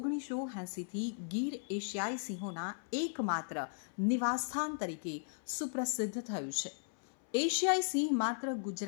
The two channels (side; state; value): right; silent; 53 dB below the other